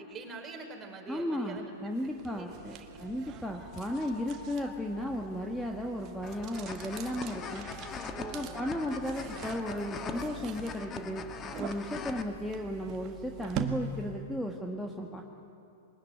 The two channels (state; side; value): normal; both; correlation 0.67